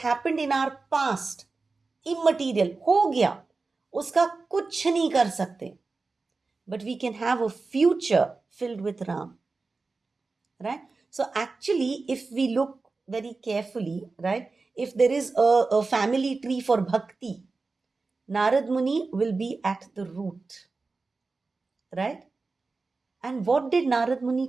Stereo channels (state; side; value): quieter; left; 3.9 dB